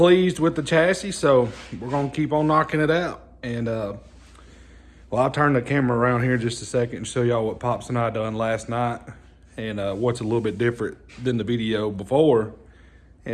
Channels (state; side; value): identical; both; correlation 1.00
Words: with the chassis, so we're gonna keep on knocking it out. And well, I'll turn the camera around here just a second and show y'all what Pops and I done last night, and what's a little bit different than the video before,